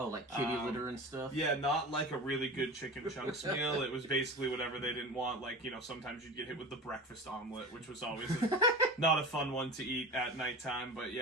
like kitty litter and stuff? Yeah, not like a really good chicken chunks meal. It was basically whatever they didn't want. Sometimes you'd get hit with the breakfast omelet, which was always not a fun one to eat at nighttime. But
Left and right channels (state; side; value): normal; both; correlation 0.32